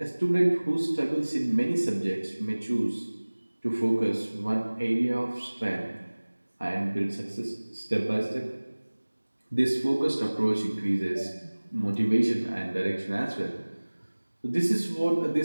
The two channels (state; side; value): inverted; both; correlation -1.00